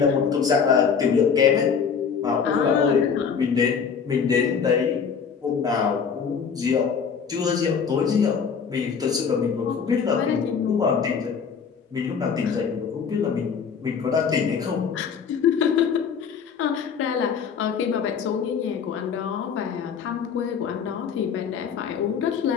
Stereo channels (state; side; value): quieter; right; 6.5 dB